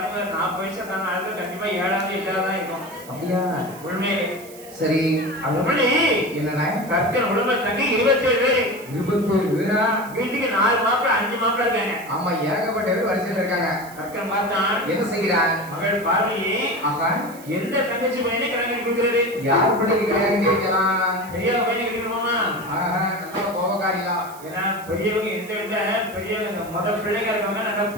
40 வயசு தான ஆளுக்கு கண்டிப்பா 7ஆவது 8ஆவது தான் இருக்கும். அப்படியா? உண்மை. சரி அதுபடி என்னண்ணா கற்கன் உடம்பு தங்கி 27 பேர். 27 பேரா? வீட்டுக்கு 4 மாப்பிள 5 மாப்பிள இருக்காங்க. ஆமா ஏகப்பட்ட பேர் வரிசையில் இருக்காங்க. கற்கன் பார்த்தான் என்ன செய்கிறான்? மகள் பார்வதி ஆகா எந்த தங்கச்சி பையனை கல்யாணம் பண்ணி கொடுக்கிறது? யார் பிள்ளைக்கு கல்யாணம் கேட்கலாம்? பெரிய பையனை கட்டிக்கணுமா? ஆஹா நல்ல கோபக்காரியா. ஏன்னா பெரியவங்க எந்த வீட்டுல பெரியவங்க முதல் பிள்ளைங்க இருக்கவங்க நல்லா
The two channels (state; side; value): noise; right; hiss, 19 dB below the sound